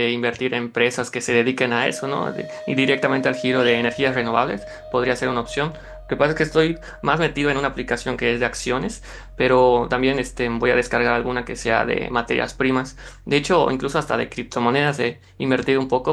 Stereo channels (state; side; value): identical; both; correlation 1.00